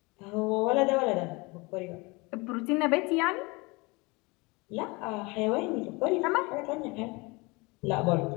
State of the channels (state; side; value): quieter; right; 26.0 dB